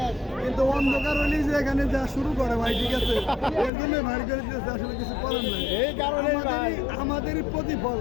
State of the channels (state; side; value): drops out; right; at 3.7 s